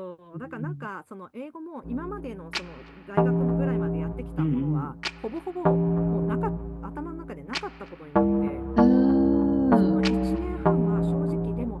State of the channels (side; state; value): both; identical; correlation 1.00